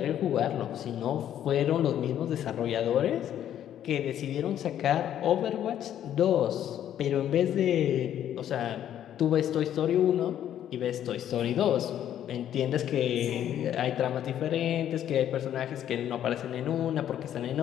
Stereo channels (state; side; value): quieter; right; 10.7 dB